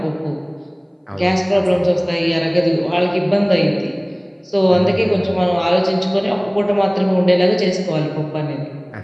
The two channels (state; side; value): identical; both; correlation 1.00